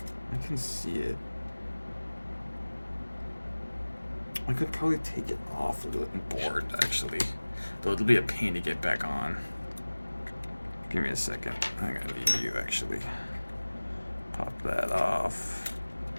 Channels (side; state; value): both; inverted; correlation -1.00